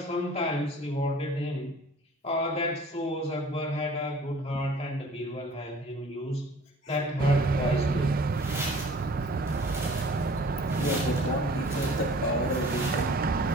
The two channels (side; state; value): both; normal; correlation 0.49